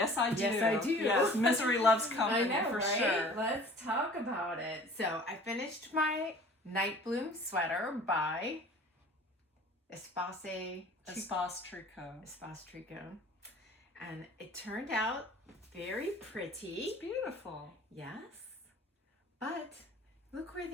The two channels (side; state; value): both; normal; correlation 0.47